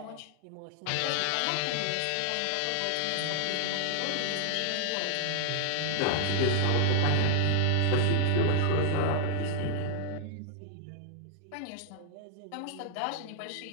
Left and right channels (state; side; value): different; both; correlation 0.00